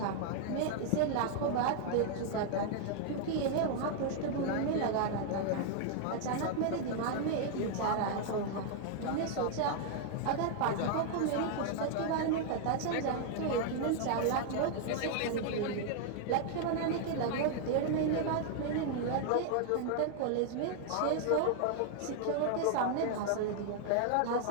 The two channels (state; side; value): different; both; correlation 0.00